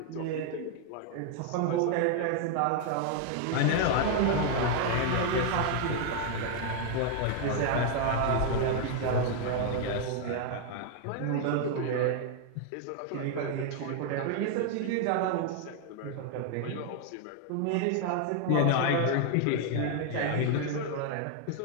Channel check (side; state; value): both; different; correlation 0.00